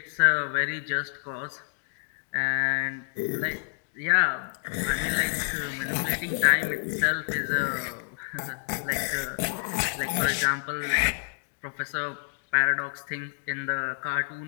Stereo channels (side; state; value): right; silent; digital silence